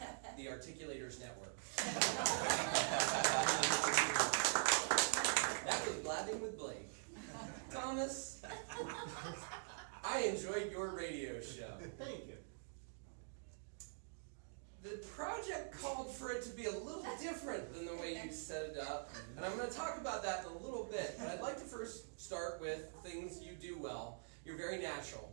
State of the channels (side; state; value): left; silent; digital silence